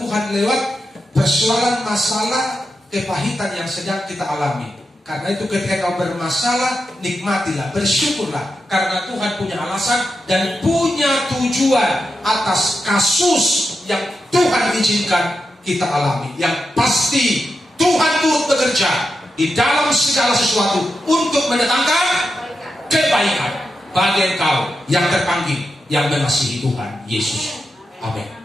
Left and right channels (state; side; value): normal; both; correlation 0.88